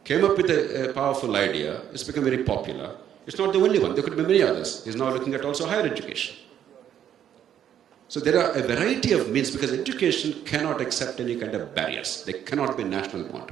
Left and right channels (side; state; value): left; quieter; 10.0 dB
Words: came up with a powerful idea. It's become very popular. It's not the only one. There could be many others. He's now looking at also higher education. So there are a variety of means because education cannot accept any kind of barriers. There cannot be national